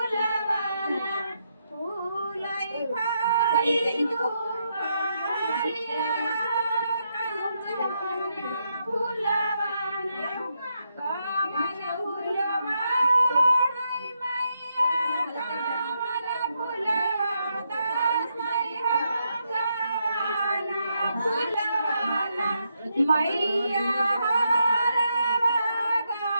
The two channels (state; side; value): inverted; both; correlation -0.81